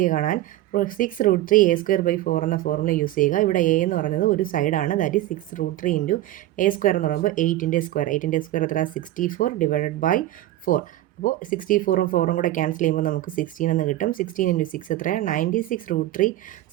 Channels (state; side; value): quieter; left; 14.8 dB